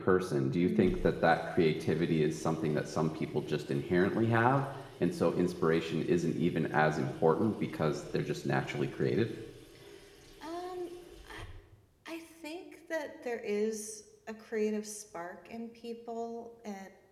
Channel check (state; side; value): identical; both; correlation 1.00